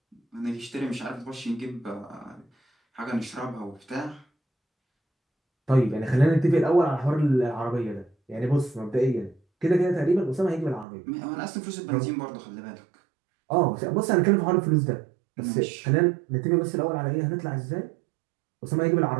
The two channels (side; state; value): left; drops out; at 10.9 s